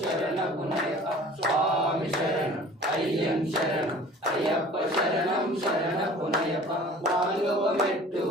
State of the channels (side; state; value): both; normal; correlation 0.45